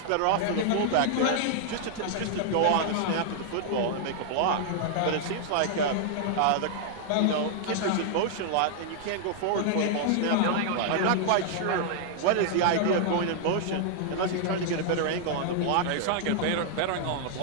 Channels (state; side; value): different; both; correlation -0.01